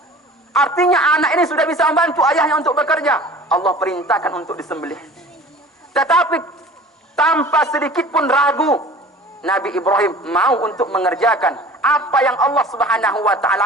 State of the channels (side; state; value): both; normal; correlation 0.44